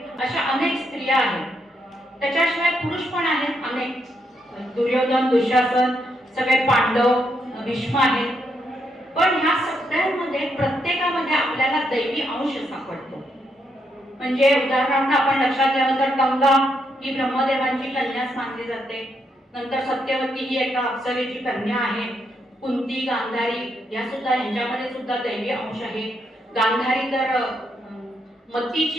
अशा अनेक स्त्रिया आहेत. त्याच्याशिवाय पुरुष पण आहेत अनेक. दुर्योधन, दुःशासन, सगळे पांडव, भीष्म आहेत. पण ह्या सगळ्यांमध्ये प्रत्येकामध्ये आपल्याला दैवी अंश सापडतो. म्हणजे उदाहरणार्थ आपण लक्षात घ्यावं तर गंगा ही ब्रह्मदेवांची कन्याच मानली जाते. नंतर सत्यवती ही एका अप्सरेची कन्या आहे. कुंती, गांधारी या सुद्धा यांच्यामध्ये सुद्धा दैवी अंश आहे. गांधारी तर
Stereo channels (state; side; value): normal; both; correlation 0.78